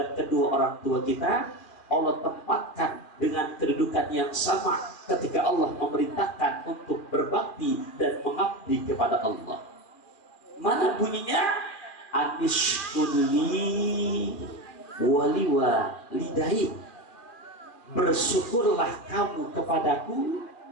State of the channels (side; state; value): right; late; 2.4 ms